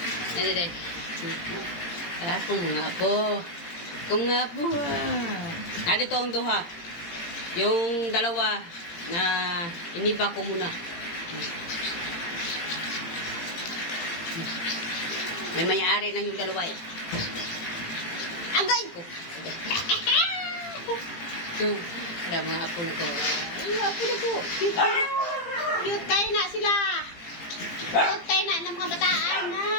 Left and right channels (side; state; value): right; late; 18 ms